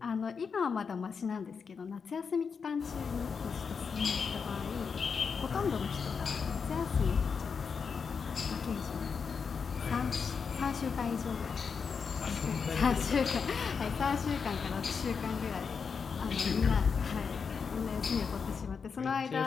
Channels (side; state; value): right; quieter; 5.8 dB